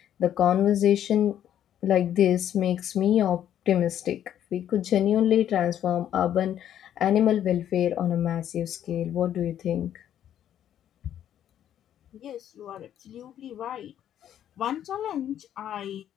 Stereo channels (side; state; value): right; quieter; 10.6 dB